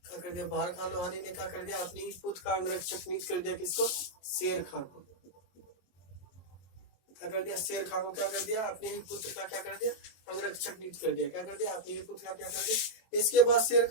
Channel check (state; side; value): late; right; 22 ms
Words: क्या कर दिया? बाहर खान लोहानी ने क्या कर दिया? अपने ही पुत्र का अंगरक्षक नियुक्त कर दिया। किसको? शेर खां को। क्या कर दिया? शेर खां को क्या कर दिया? अपने ही पुत्र का क्या कर दिया? अंगरक्षक नियुक्त कर दिया। क्या कर दिया? अपने ही पुत्र का क्या कर दिया? इसके बाद शेर